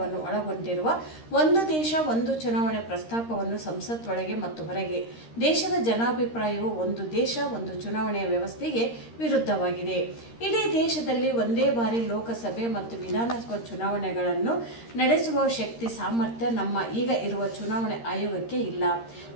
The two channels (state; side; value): late; right; 13 ms